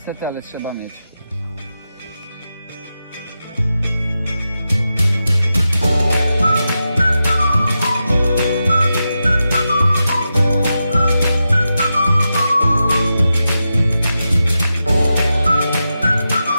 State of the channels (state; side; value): inverted; both; correlation -0.90